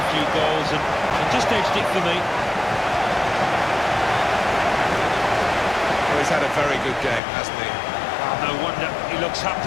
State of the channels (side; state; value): right; drops out; at 7.2 s